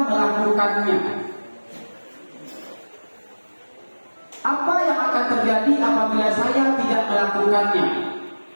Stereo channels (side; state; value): both; inverted; correlation -1.00